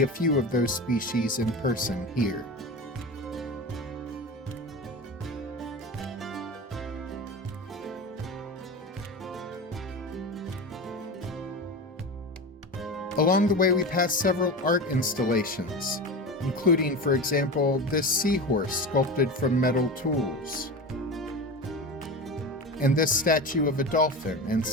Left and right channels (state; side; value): normal; both; correlation 0.27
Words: a few of those species in person here. Along the way, we passed several art installations, including, for example, this seahorse sculpted from metal tools, and this statue of a dolphin and